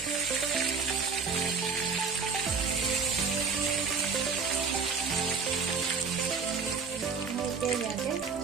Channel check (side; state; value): left; quieter; 5.3 dB